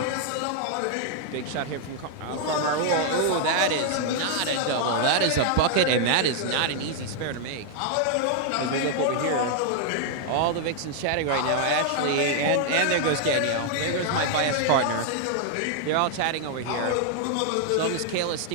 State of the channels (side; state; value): both; different; correlation 0.00